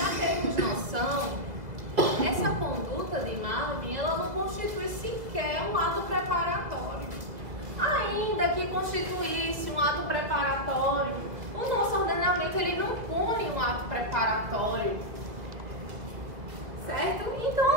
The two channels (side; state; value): left; late; 1.7 ms